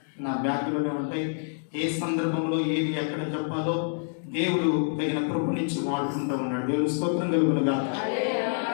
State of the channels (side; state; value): right; silent; digital silence